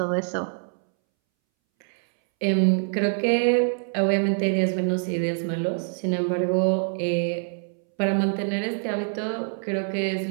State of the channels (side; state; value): left; silent; 62 dB below the other